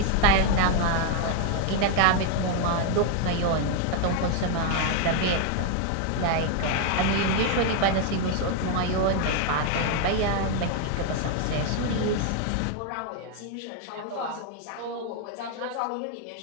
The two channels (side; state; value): both; different; correlation 0.00